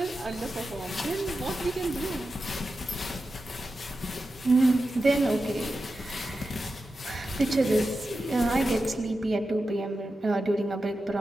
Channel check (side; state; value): both; normal; correlation 0.91